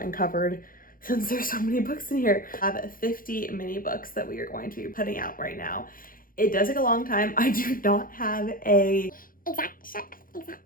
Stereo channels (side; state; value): right; late; 0.41 ms